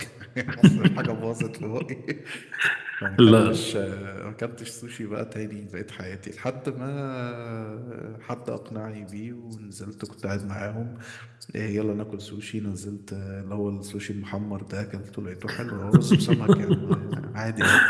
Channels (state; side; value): identical; both; correlation 1.00